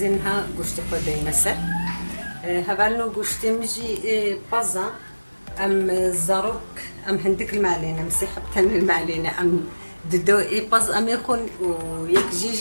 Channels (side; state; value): both; inverted; correlation -1.00